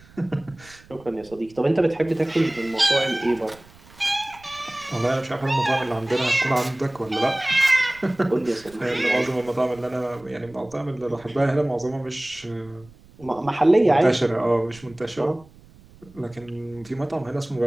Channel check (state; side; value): noise; right; rumble, 24 dB below the sound